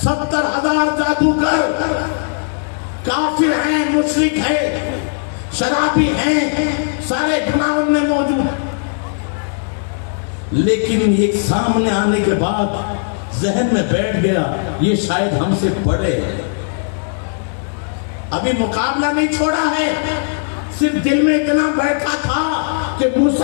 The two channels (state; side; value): silent; right; digital silence